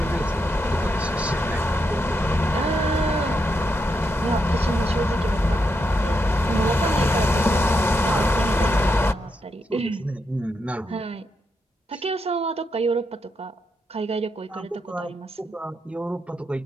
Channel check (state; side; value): normal; both; correlation 0.82